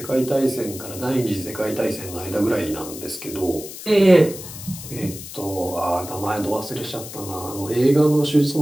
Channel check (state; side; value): noise; left; hiss, 12 dB below the sound